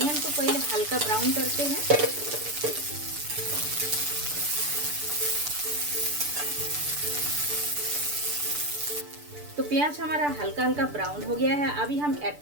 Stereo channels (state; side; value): late; left; 6.8 ms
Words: को पहले हल्का ब्राउन करते हैं। तो प्याज हमारा हल्का हल्का ब्राउन हो गया है। अभी हम ऐड